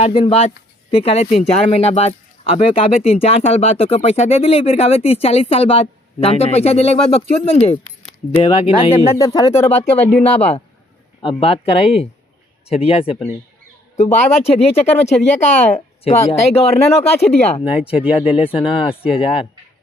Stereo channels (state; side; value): normal; both; correlation 0.64